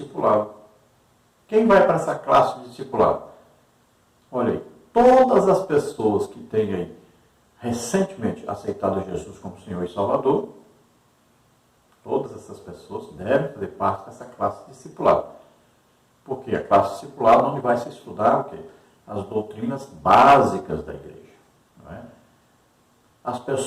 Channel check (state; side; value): identical; both; correlation 1.00